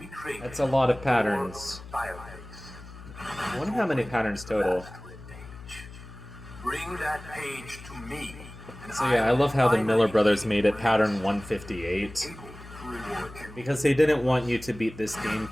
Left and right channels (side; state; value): left; noise; hum, 16 dB below the sound